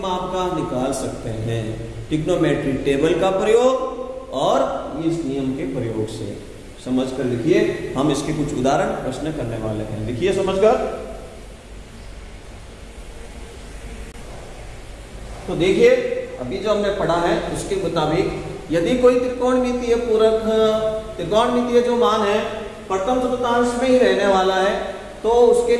का निकाल सकते हैं, ट्रिग्नोमेट्री टेबल का प्रयोग और इस नियम के प्रयोग से। समझकर लिखिए, हम इसके कुछ उदाहरण प्रश्न करने वाले हैं, लिखिए समझकर। तो देखिए अभी जो हमने पढ़ा है उसके मुताबिक यदि कोई त्रिकोणमितीय पूरक, त्रिकोणमितीय जो मान है प्रथम चतुर्थांश में ही रहने वाला है, तो उसके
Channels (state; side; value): identical; both; correlation 1.00